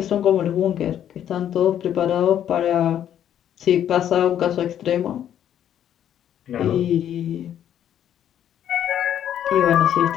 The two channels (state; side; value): quieter; right; 10.3 dB